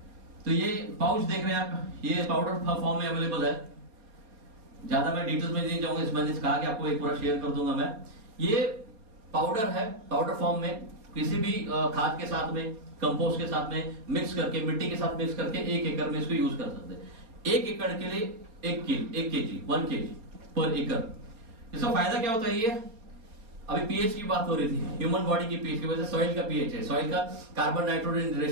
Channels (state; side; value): late; left; 4.4 ms